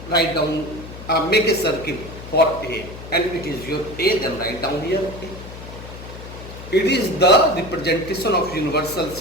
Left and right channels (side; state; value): left; noise; hum, 13 dB below the sound